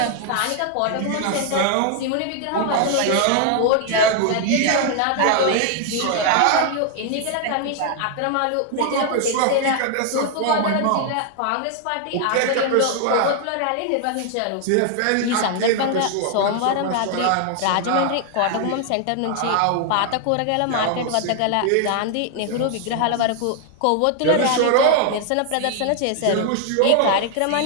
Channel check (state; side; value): different; both; correlation 0.00